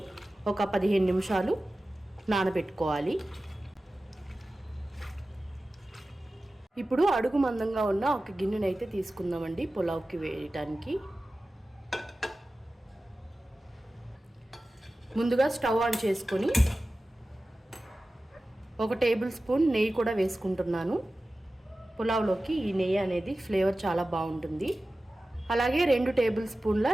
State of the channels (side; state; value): both; normal; correlation 0.95